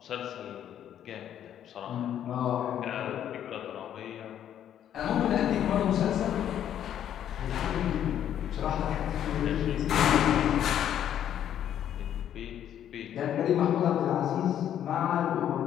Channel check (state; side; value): quieter; right; 10.3 dB